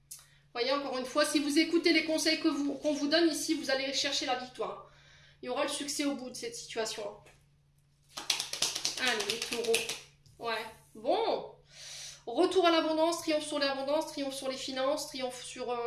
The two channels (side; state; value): both; identical; correlation 1.00